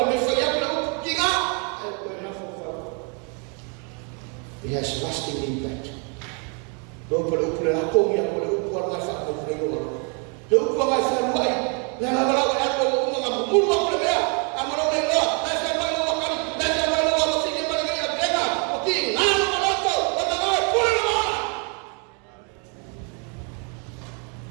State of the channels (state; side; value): quieter; left; 37.3 dB